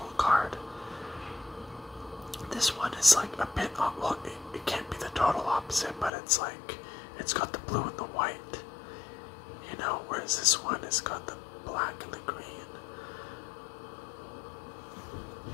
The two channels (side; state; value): right; drops out; at 6.1 s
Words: is like a bit, well, it can't be the total opposite, but it's like, it's got the blue and the white, you know, whereas this one has got the black and the green.